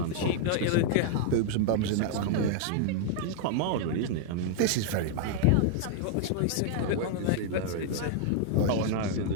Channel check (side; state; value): both; different; correlation -0.01